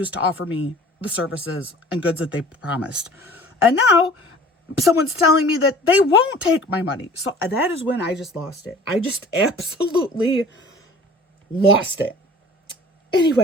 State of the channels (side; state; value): both; normal; correlation 0.47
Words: to offer me the services and goods that they promised. And now someone's telling me that they won't take my money. So that is when I just lost it. I just absolutely lost it.